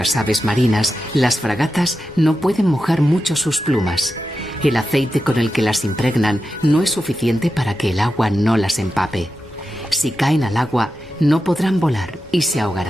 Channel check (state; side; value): normal; both; correlation 0.90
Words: aves marinas, las fragatas no pueden mojar mucho sus plumas. El aceite con el que las impregnan no es suficiente para que el agua no las empape. Si caen al agua, no podrán volar y se